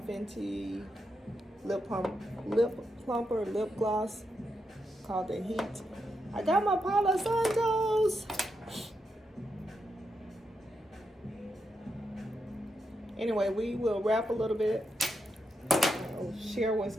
lip plumper lip gloss called the Heat. I got my Palo Santos. Anyway, we will wrap a little bit. I'll share what's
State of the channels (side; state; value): both; normal; correlation 0.84